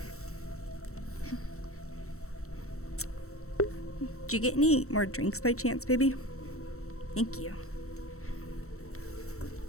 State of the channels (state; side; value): late; right; 0.63 ms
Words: Did you get any more drinks by chance, baby? Thank you.